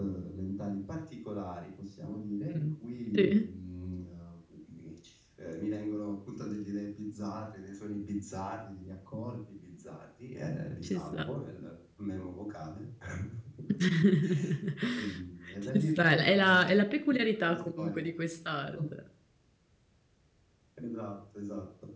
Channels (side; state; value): both; identical; correlation 1.00